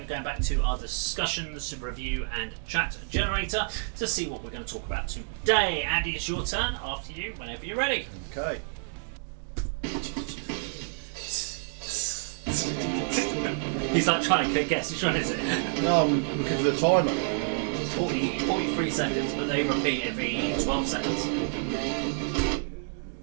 going back to our discussions, review and chat generator to see what we're going to talk about today. Andy, it's your turn. After you, whenever you're ready. Okay. He's like trying to guess. Which one is it? No, I'm looking for the timer. 43 seconds, but they repeat every 12 seconds.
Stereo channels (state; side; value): silent; left; digital silence